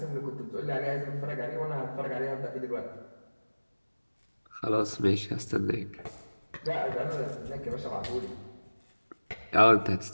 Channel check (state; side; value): inverted; both; correlation -1.00